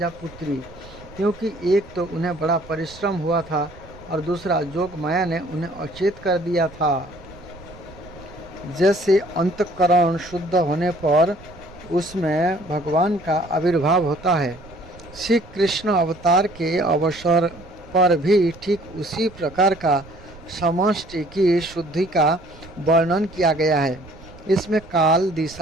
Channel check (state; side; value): noise; right; rumble, 20 dB below the sound